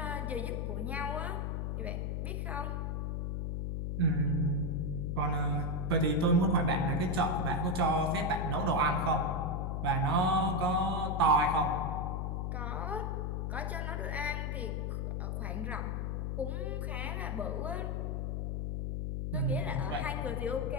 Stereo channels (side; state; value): left; noise; hum, 1 dB below the sound